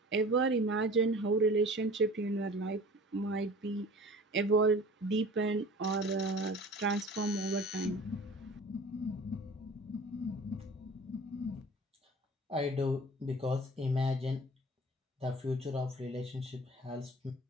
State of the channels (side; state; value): both; normal; correlation 0.43